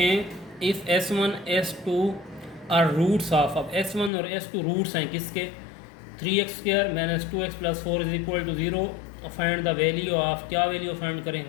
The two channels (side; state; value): right; drops out; at 4.1 s